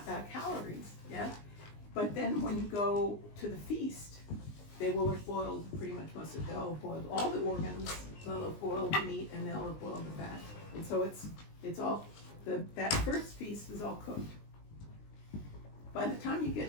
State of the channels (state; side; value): late; right; 19 ms